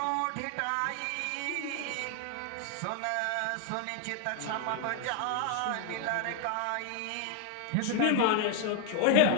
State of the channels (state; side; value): different; both; correlation 0.00